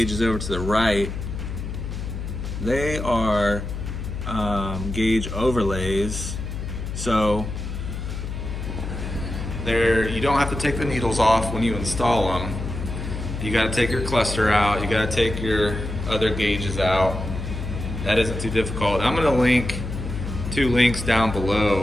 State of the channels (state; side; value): noise; left; hum, 6 dB below the sound